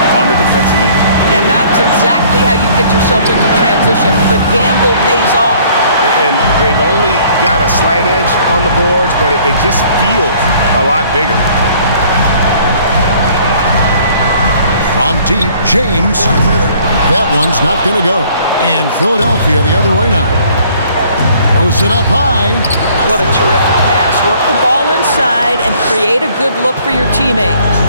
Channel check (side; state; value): both; inverted; correlation -0.57